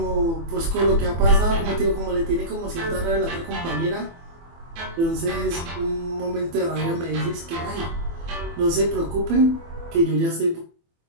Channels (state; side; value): late; left; 24 ms